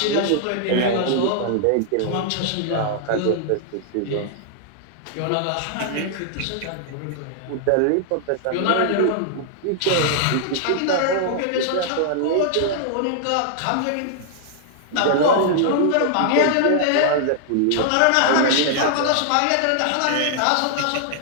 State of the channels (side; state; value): both; different; correlation -0.01